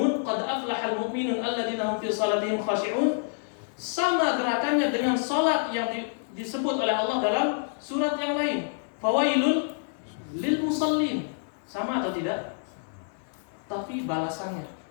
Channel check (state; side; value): silent; right; 60 dB below the other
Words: qad aflahal mu'minun alladzina hum fi salatihim khashi'un, sama gerakannya dengan salat yang disebut oleh Allah dalam surat yang lain, fawailul lil musallin. Sama atau tidak? Tapi balasannya,